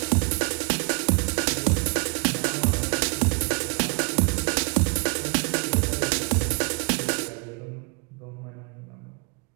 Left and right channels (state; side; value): quieter; left; 33.1 dB